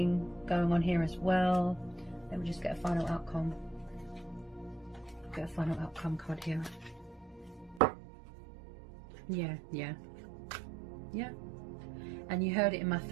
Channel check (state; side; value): drops out; left; at 7.8 s